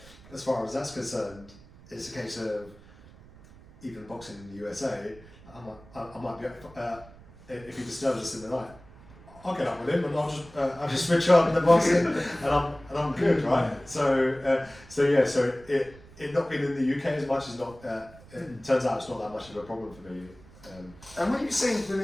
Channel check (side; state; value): right; noise; rumble, 22 dB below the sound